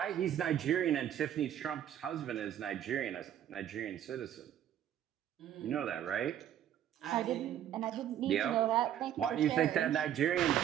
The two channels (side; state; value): left; quieter; 10.6 dB